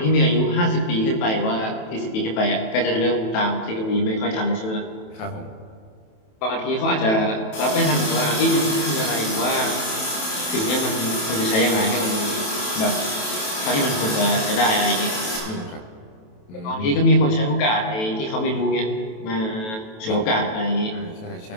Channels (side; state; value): right; late; 28 ms